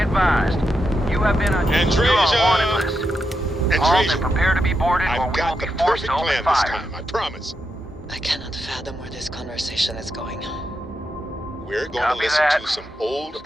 you have been on wanted list. Halt and prepare to be boarded or we will be forced to open fire. Time, I promise. I cannot fathom where this conversation is going. We're going Copy to listen that. to some old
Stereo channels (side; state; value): both; normal; correlation 0.85